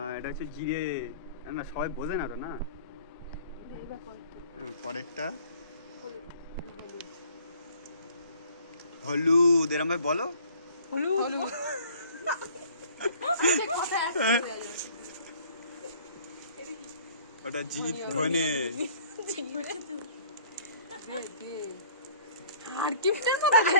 এটা হচ্ছে জিরে, না সবাই বোঝে না তো, না পরেরটা হলুদ, এরম ভাই বলো। ওটা জিত ধনে।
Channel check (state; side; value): inverted; both; correlation -0.53